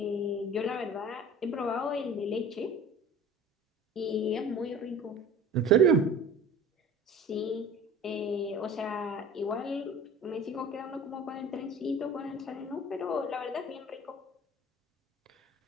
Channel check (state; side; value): normal; both; correlation 0.42